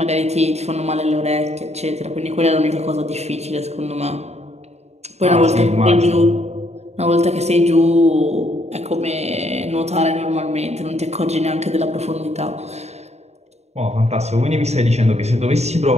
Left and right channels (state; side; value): late; left; 0.32 ms